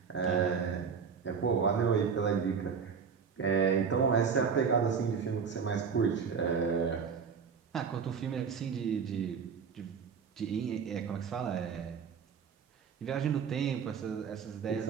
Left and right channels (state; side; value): quieter; left; 6.3 dB